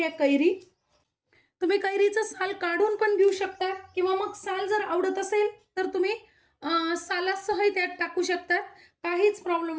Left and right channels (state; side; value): identical; both; correlation 1.00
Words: आहे कैरी. तुम्ही कैरीचं साल काढून पण घेऊ शकता किंवा मग साल जर आवडत असेल तर तुम्ही सालासह त्यात टाकू शकतात. काहीच